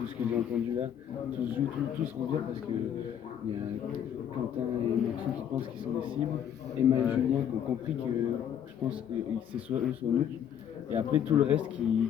ce que j'ai entendu là. Tout se joue, tout se revient parce que il y a Quentin et Maxou qui pensent qu'ils sont des cibles. Emma et Julien qui ont compris que je pense que c'est soit eux soit nous. Et après tout le reste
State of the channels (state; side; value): quieter; right; 9.3 dB